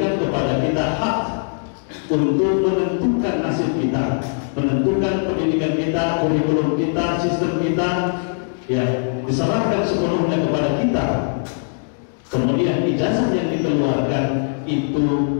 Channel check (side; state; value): right; silent; digital silence